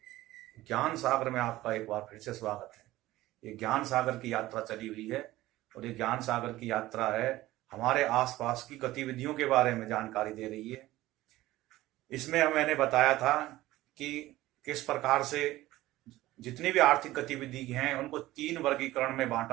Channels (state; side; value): quieter; left; 16.7 dB